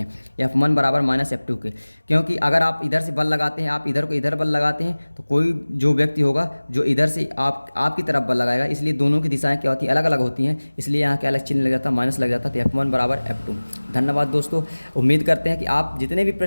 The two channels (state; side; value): inverted; both; correlation -1.00